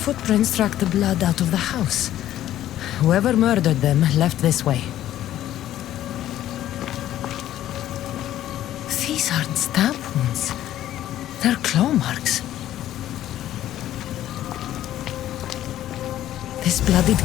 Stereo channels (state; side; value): quieter; right; 12.7 dB